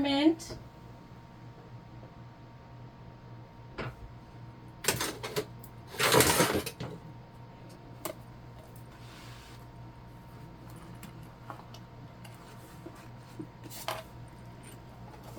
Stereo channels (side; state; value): both; identical; correlation 1.00